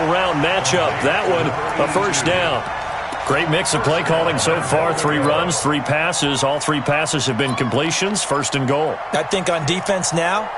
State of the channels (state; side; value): identical; both; correlation 1.00